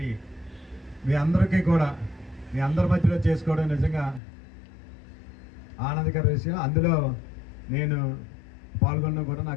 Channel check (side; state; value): right; drops out; at 4.2 s